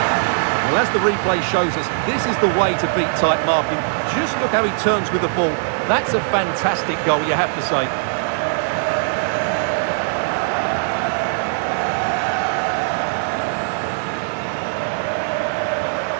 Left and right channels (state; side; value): silent; left; digital silence